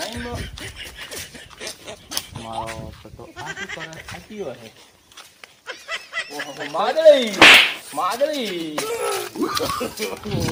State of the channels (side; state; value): both; identical; correlation 1.00